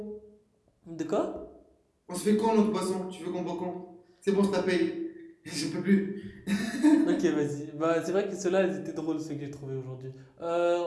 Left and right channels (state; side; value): identical; both; correlation 1.00